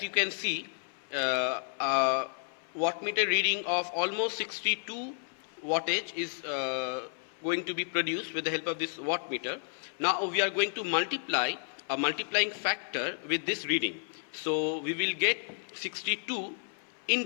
you can see, a wattmeter reading of almost 62 wattage is going to be produced with the help of this wattmeter. Now we are going to multiply a multiplying factor with this reading. So we will get 62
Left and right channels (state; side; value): silent; right; 57 dB below the other